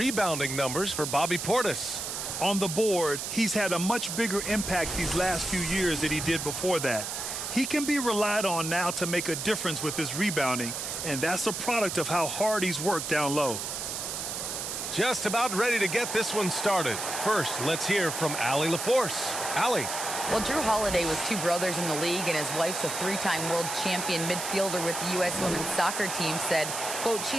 numbers for Bobby Portis. On the board, he's had a much bigger impact these last few years than he did before that. He can be relied on now to make a difference with his rebounding, and that's a product of how hard he's worked down low. Just about ready to get this one started. First, let's hear from Allie LaForce. Allie. Well, Drew Holiday was two brothers in the league, and his wife's a three-time world champion midfielder with the U.S. women's soccer team, said, quote,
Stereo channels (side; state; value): right; noise; hiss, 4 dB below the sound